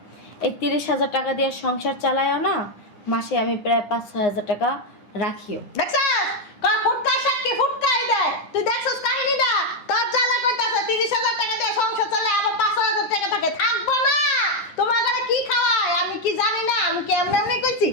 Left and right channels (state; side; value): late; right; 9.8 ms